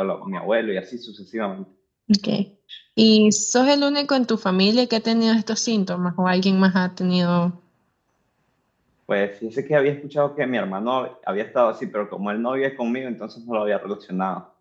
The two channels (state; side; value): identical; both; correlation 1.00